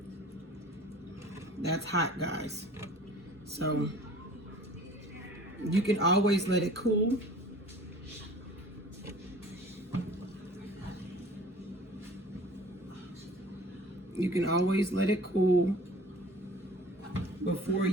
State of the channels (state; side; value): normal; both; correlation 0.47